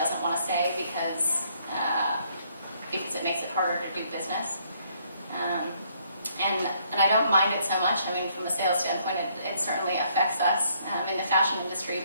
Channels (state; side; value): inverted; both; correlation -0.68